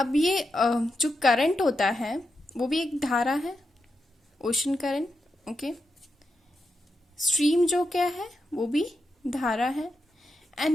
ये जो करंट होता है वो भी एक धारा है, ओशन करंट. ओके, स्ट्रीम जो क्या है वो भी धारा है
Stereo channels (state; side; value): normal; both; correlation 0.86